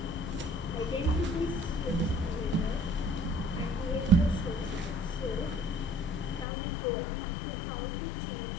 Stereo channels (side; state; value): right; drops out; at 6.5 s